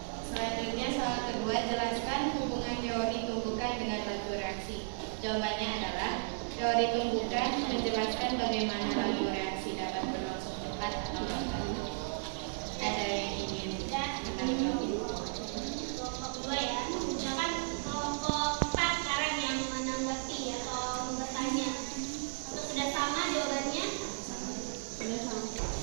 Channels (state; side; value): silent; left; 55 dB below the other